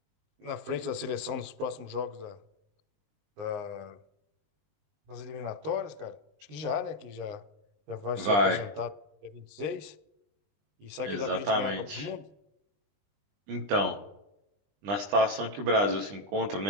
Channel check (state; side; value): late; left; 20 ms